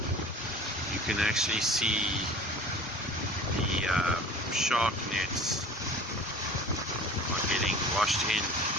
you can actually see the shark nets are getting washed in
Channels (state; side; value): normal; both; correlation 0.43